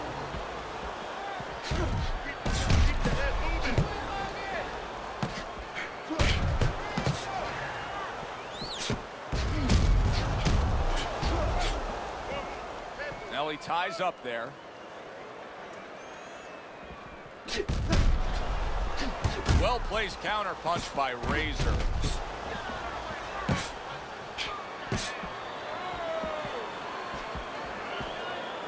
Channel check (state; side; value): identical; both; correlation 1.00